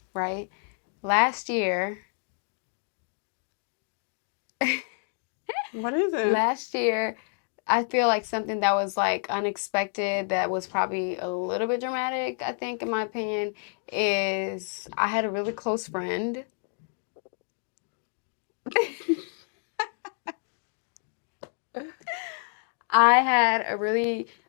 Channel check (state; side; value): silent; right; 59 dB below the other